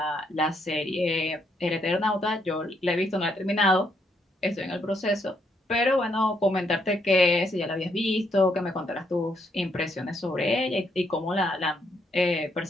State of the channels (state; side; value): normal; both; correlation 0.75